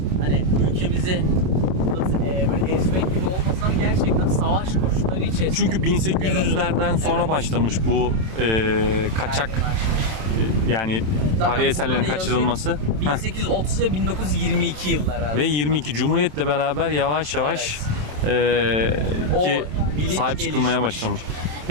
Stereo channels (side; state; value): left; late; 27 ms